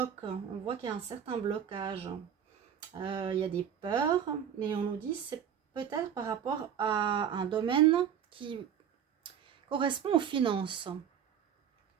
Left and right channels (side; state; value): left; quieter; 8.7 dB